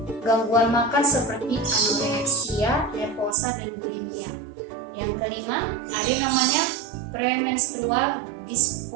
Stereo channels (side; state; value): left; drops out; at 3.4 s